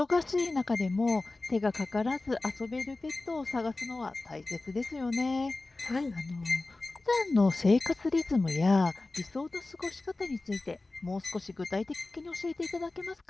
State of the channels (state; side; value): quieter; right; 3.2 dB